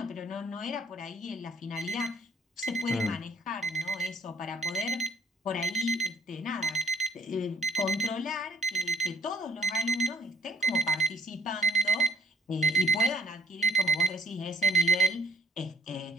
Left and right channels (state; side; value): normal; both; correlation 0.61